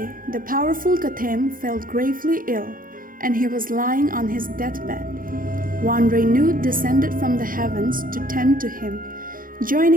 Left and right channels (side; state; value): left; late; 0.40 ms